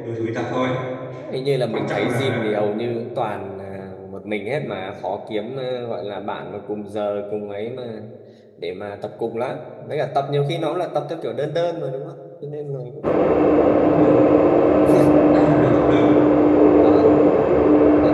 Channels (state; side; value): identical; both; correlation 1.00